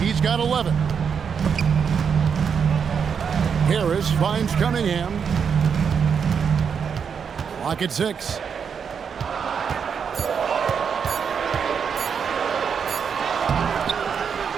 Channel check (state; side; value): quieter; left; 6.8 dB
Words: He's got 11. Harris finds Cunningham. Clock at 6.